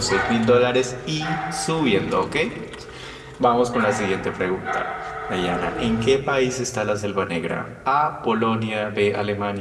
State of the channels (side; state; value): both; identical; correlation 1.00